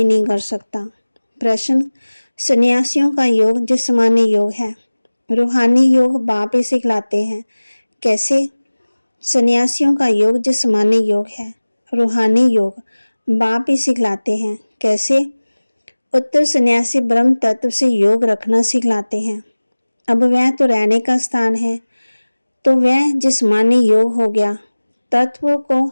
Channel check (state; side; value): inverted; both; correlation -1.00